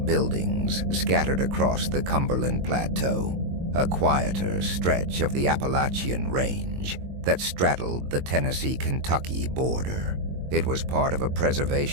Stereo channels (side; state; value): left; late; 22 ms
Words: buildings scattered across the Cumberland Plateau, a quieter stretch of the Appalachian range that straddled the Tennessee-Kentucky border. It was part of a